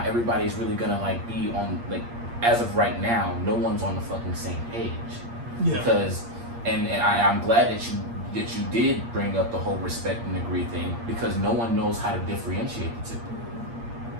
everybody is really gonna like be on, like, as of right now, no one's on the fucking same page. Yeah. Because, and I'm glad that you did bring up the whole respect and agree thing, because no one knows how to differentiate the two.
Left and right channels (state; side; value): late; left; 8.5 ms